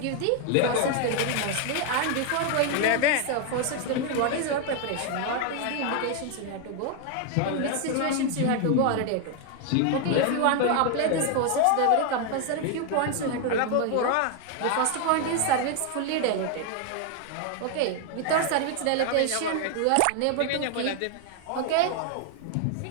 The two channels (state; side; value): different; both; correlation 0.00